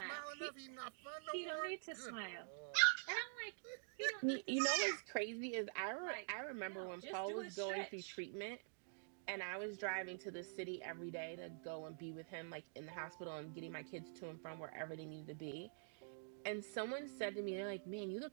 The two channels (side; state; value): left; silent; digital silence